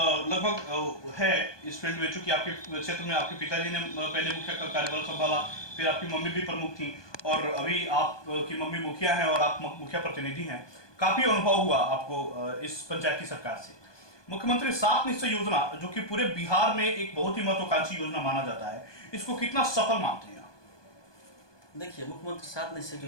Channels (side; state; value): right; late; 1.2 ms